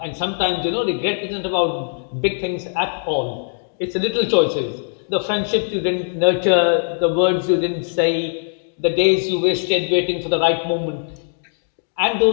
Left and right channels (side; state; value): right; silent; digital silence